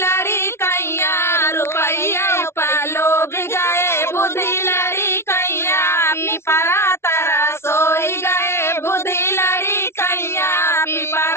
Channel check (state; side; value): late; right; 0.12 ms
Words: कैया, रुपैया पालो भी गए बुद्धि लड़ी कैया, पिपरा तारा सोई गए बुद्धि लड़ी कैया,